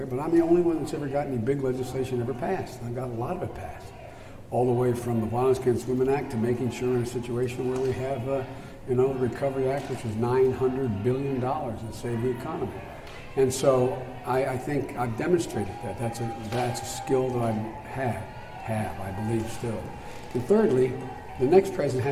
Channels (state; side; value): identical; both; correlation 1.00